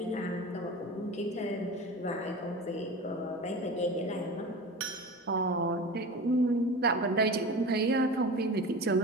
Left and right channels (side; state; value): both; normal; correlation 0.31